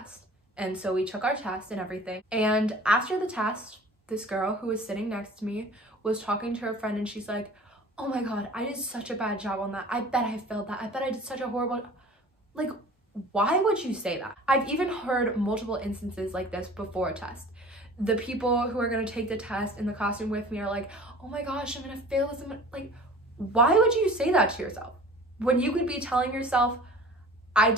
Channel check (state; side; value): normal; both; correlation 0.44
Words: And so we took our test and everything. And after the test, this girl who was sitting next to me was talking to her friend and she's like, oh my God, I did such a bad job on that. I bet I failed that. I bet I did such a horrible, like, why would you say that? I've even heard multiple instances like this before a test. The people who are gonna take the test in the classroom with me are like, oh my gosh, I'm gonna fail this. Like, why would you say that to yourself? When you could be telling yourself, I